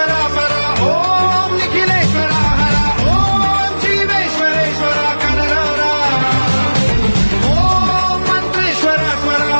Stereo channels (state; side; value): inverted; both; correlation -1.00